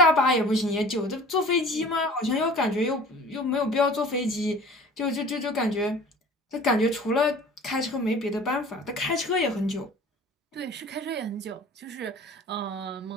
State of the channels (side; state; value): both; normal; correlation 0.44